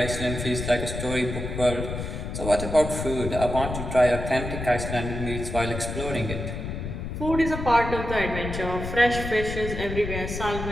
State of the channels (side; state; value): left; noise; rumble, 6 dB below the sound